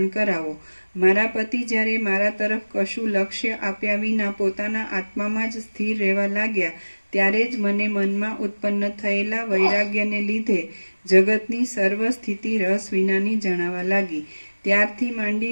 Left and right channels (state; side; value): inverted; both; correlation -1.00